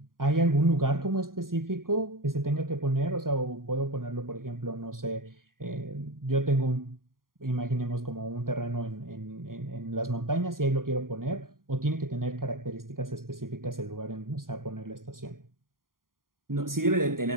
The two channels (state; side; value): late; left; 0.91 ms